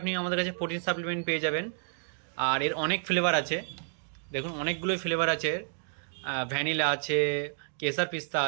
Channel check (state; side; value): silent; left; digital silence